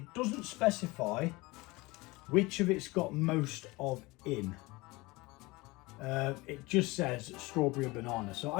doesn't specify which of it's got most of in. It just says strawberry or banana. So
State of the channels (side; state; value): right; quieter; 22.8 dB